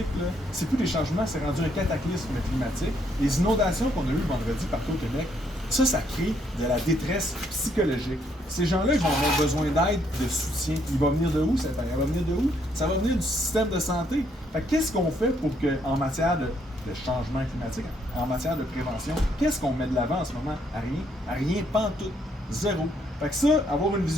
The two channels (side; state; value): both; normal; correlation 0.71